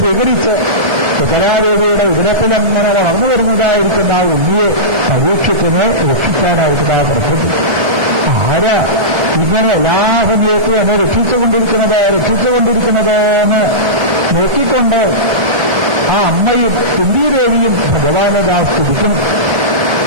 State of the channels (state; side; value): late; left; 1.3 ms